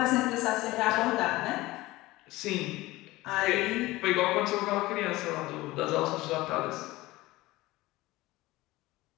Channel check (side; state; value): right; quieter; 19.1 dB